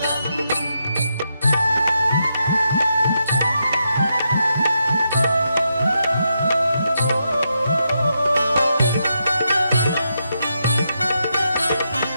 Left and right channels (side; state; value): both; inverted; correlation -0.83